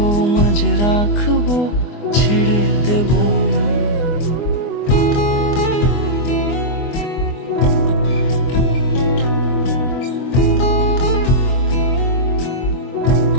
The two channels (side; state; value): right; late; 24 ms